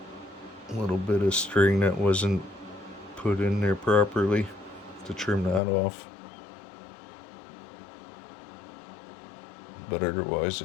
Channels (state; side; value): drops out; right; at 5.6 s